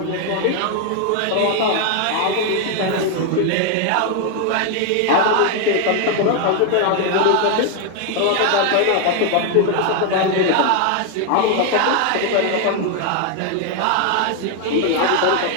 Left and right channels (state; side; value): different; both; correlation 0.01